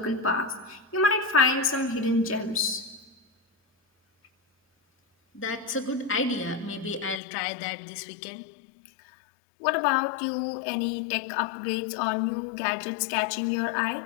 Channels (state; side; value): drops out; right; at 7.2 s